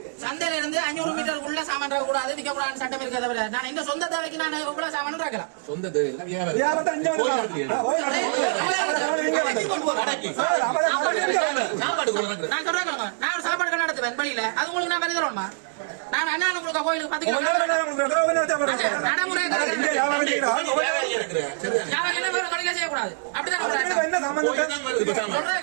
சந்தையில இருந்து 500 மீட்டர் உள்ள சாமான் கூடாது விற்க கூடாது சட்டம் இருக்க தவிர நான் இந்த சொந்த தேவைக்கு நான் எவ்வளவு சாமான் இருக்கிறேன். சொந்த நான் சாப்பாடு கடை நடத்துவேன் பள்ளியில அது உங்களுக்கு நான் வரி தரணுமா? நான் அண்ணா உங்களுக்கு கோயிலுக்கு 10 கிலோ நடைமுறை செய்யக்கூடாது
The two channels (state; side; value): silent; left; digital silence